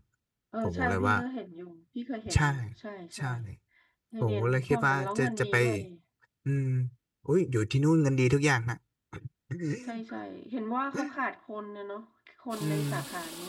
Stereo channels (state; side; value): identical; both; correlation 1.00